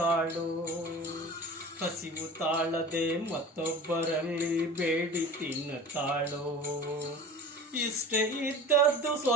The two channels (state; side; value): normal; both; correlation 0.38